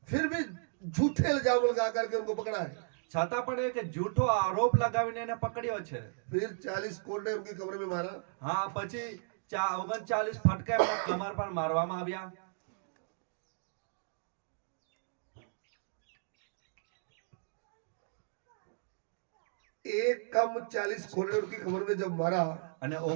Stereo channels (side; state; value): left; silent; digital silence